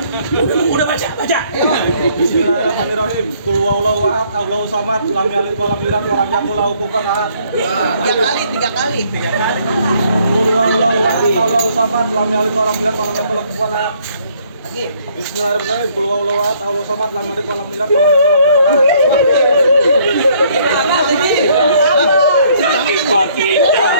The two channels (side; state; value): both; inverted; correlation -0.64